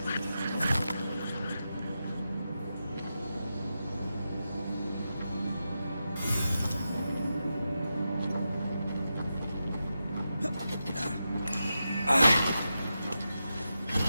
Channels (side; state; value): both; inverted; correlation -0.89